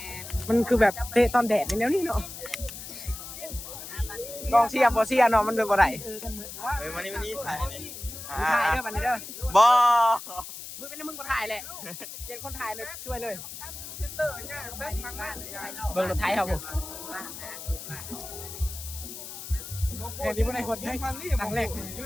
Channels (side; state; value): left; noise; hiss, 11 dB below the sound